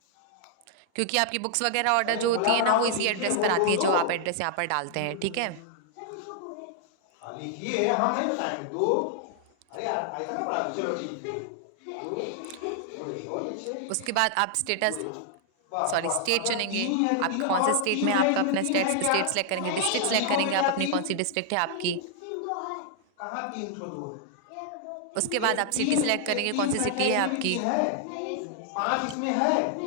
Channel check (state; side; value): different; both; correlation 0.00